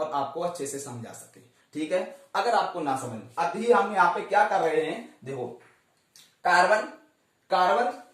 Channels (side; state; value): both; identical; correlation 1.00